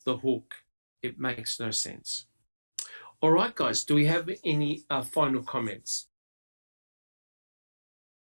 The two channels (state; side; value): inverted; both; correlation -1.00